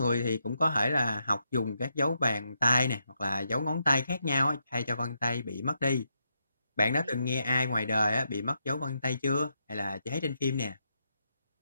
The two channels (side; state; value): both; inverted; correlation -0.81